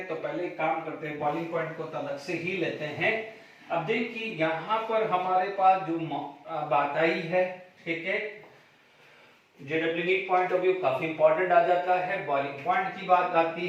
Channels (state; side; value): identical; both; correlation 1.00